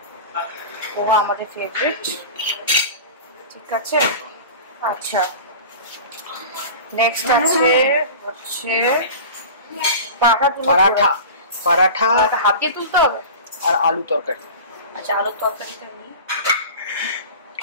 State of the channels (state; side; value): inverted; both; correlation -0.34